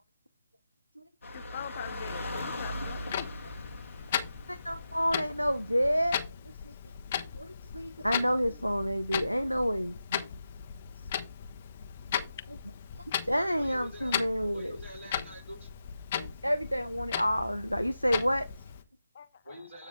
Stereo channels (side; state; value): both; inverted; correlation -0.88